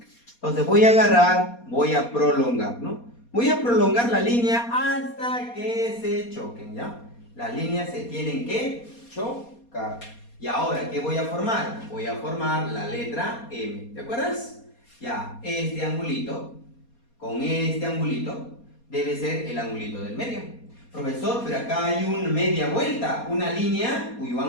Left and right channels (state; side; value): late; right; 4.2 ms